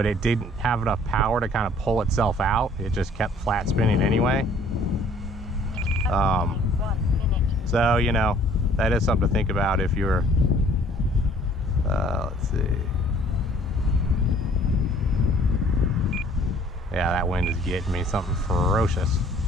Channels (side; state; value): both; normal; correlation 0.56